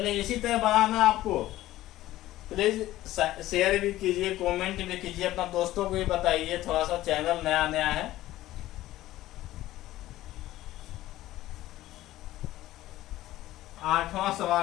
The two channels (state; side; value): quieter; right; 15.4 dB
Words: इसी तरह बनाना आपको। प्लीज शेयर भी कीजिए, कमेंट भी कीजिए, अपना दोस्तों को भी बताइए। थोड़ा सा चैनल नया नया है। आठवां